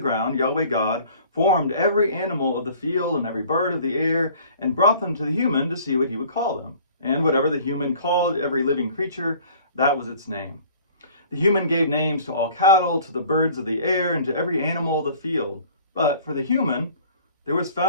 Yahweh God formed every animal of the field and every bird of the air and brought them to the human to see what he would call them. And whatever the human called every living creature, that was its name. The human gave names to all cattle, to the birds of the air, and to every animal of the field. But for the human, there was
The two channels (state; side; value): inverted; both; correlation -0.50